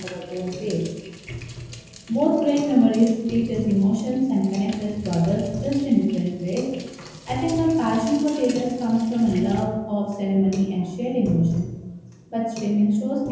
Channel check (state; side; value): identical; both; correlation 1.00